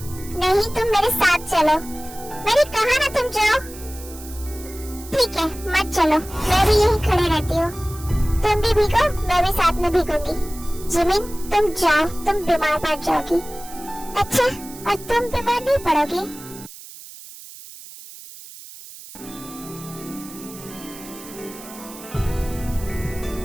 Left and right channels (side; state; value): right; noise; hiss, 16 dB below the sound